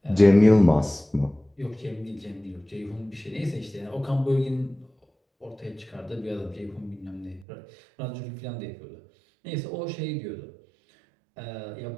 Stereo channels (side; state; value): left; drops out; at 7.5 s